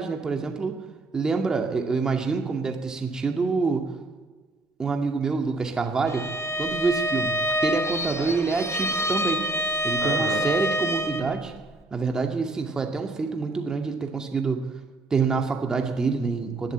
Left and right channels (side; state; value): left; quieter; 3.0 dB